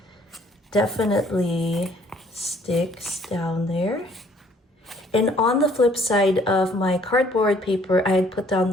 definitely sticks down there. And on the flip side of my cardboard paper, I had put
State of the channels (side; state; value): both; normal; correlation 0.61